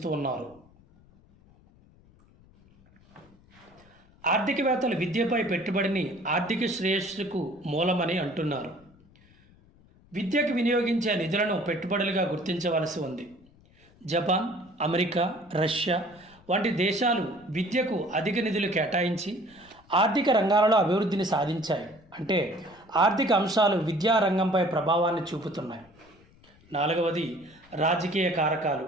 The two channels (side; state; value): left; noise; rumble, 28 dB below the sound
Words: ఉన్నారు. ఆర్థికవేత్తలు విద్యపై పెట్టుబడిని ఆర్థిక శ్రేయస్సుకు మూలమని అంటున్నారు. విద్యకు వినియోగించే నిధులను పెట్టుబడులుగా గుర్తించవలసి ఉంది. జపాన్, అమెరికా, రష్యా వంటి దేశాలు విద్యకు అధిక నిధులు కేటాయించి ఆర్థిక రంగాలలో అభివృద్ధిని సాధించాయి. అంటే ఆర్థిక అంశాలు విద్యా రంగంపై ప్రభావాన్ని చూపుతున్నాయి. నాలుగవది రాజకీయ కారకాలు